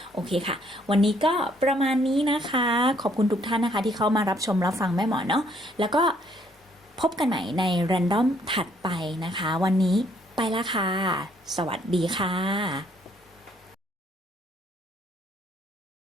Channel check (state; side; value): normal; both; correlation 0.67